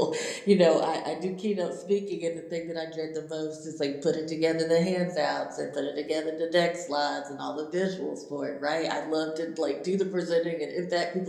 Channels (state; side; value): identical; both; correlation 1.00